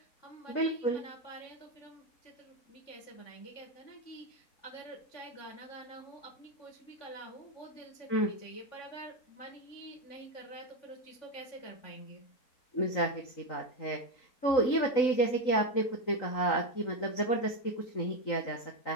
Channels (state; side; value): late; right; 3.9 ms